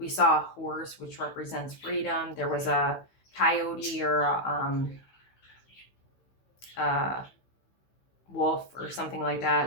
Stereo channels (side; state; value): right; late; 16 ms